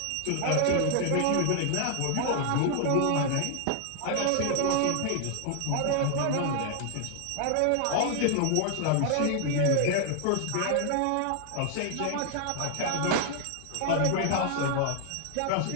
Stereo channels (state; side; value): different; both; correlation 0.00